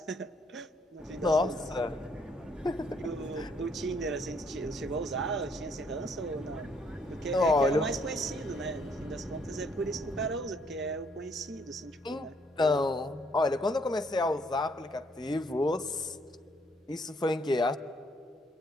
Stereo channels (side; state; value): both; normal; correlation 0.68